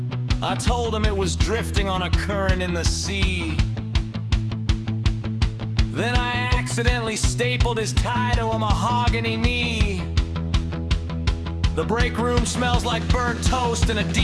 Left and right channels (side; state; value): both; identical; correlation 1.00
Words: I told him it was drifting on a current in the sea. Then I accidentally stapled his tie to a mahogany knee. The break room smells like burnt toast in a